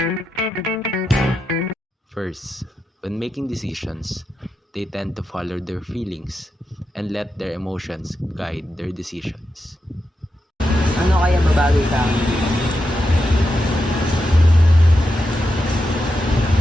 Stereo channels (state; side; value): normal; both; correlation 0.87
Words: First, when making decisions, they tend to follow their feelings and let their emotions guide their decisions. Ano kaya babawi sa akin?